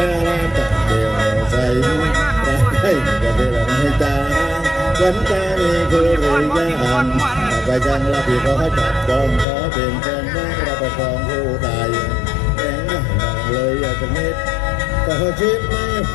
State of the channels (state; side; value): drops out; right; at 9.5 s